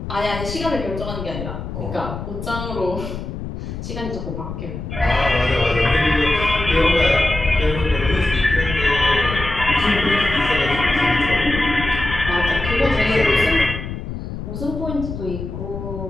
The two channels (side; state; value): left; noise; rumble, 7 dB below the sound